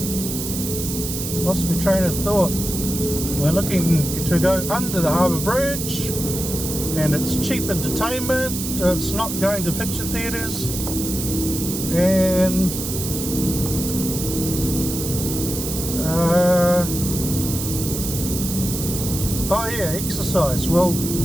Lost my train of thought. We're looking to go under the harbour bridge, and it's cheap entertainment. It's not going to picture theatres. And oh yeah, exercise. Well,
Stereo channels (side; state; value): right; noise; hiss, 5 dB below the sound